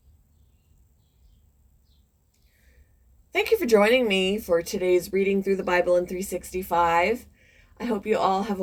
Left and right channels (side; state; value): both; identical; correlation 1.00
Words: Thank you for joining me for today's reading through the Bible in 365. I hope you all have